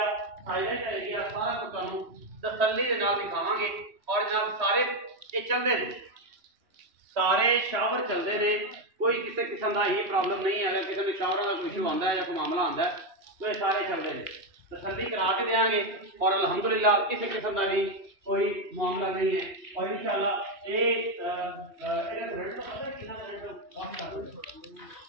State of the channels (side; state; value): left; late; 3.1 ms